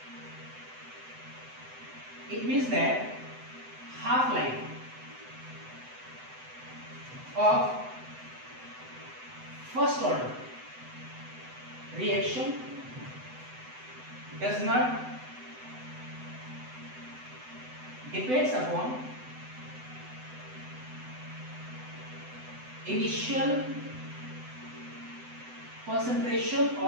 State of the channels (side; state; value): left; late; 7.9 ms